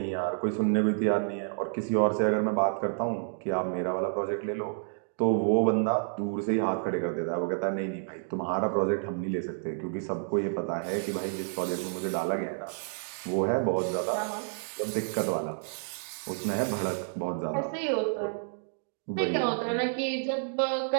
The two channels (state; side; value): silent; left; digital silence